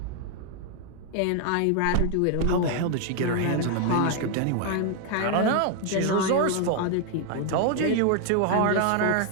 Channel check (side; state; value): both; different; correlation 0.00